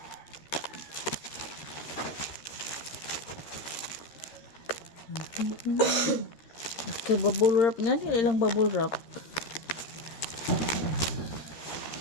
Okay, bubble wrap nga. Ilang bubble wrap.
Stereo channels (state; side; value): late; right; 13 ms